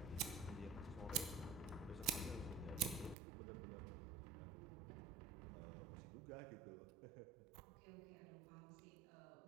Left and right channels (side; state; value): left; drops out; at 3.2 s